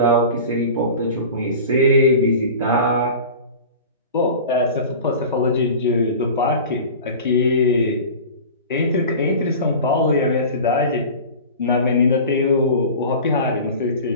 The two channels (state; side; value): inverted; both; correlation -0.36